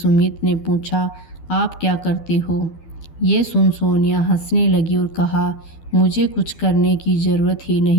ने पूछा, आप क्या करते हो? ये सुन सोनिया हंसने लगी और कहा, मुझे कुछ करने की ज़रूरत ही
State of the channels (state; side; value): late; right; 12 ms